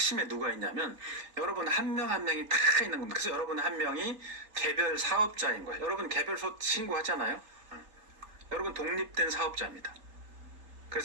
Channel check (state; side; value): late; left; 3.8 ms